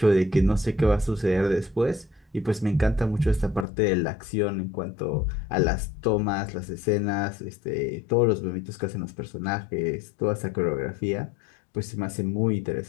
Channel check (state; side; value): drops out; right; at 3.7 s